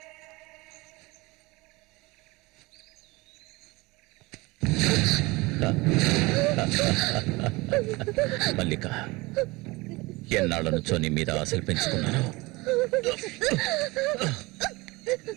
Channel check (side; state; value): left; quieter; 23.1 dB